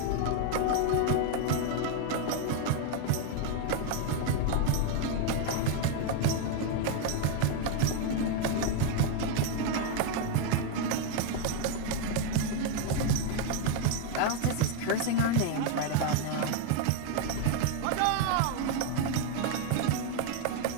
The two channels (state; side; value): different; both; correlation 0.01